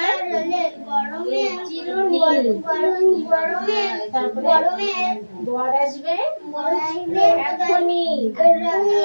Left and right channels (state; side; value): inverted; both; correlation -1.00